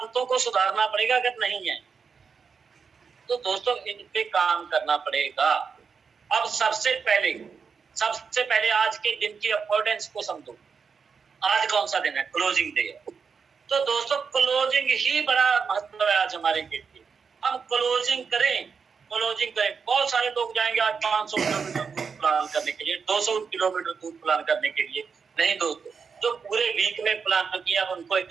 को सुधारना पड़ेगा। अगर नहीं है तो दोस्तों इन पे काम करना पड़ेगा। अब सबसे पहले आज के दिन की इंपॉर्टेंस को समझो। आज कौन सा दिन है? क्लोजिंग डे है। तो दोस्तों क्लोजिंग ही बड़ा महत्व है आज हमारे के लिए। हम क्लोजिंग करें। बहुत सारे लोग जाएंगे आज 500 किलोमीटर दूर प्लान करने के लिए, 200 किलोमीटर दूर प्लान करने के लिए। नहीं दोस्तों, जो पूरे वीक में प्लान किया उनको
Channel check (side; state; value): left; quieter; 5.8 dB